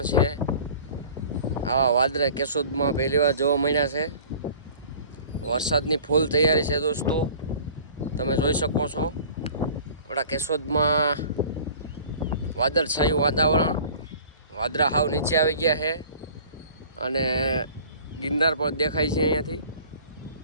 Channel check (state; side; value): inverted; both; correlation -0.46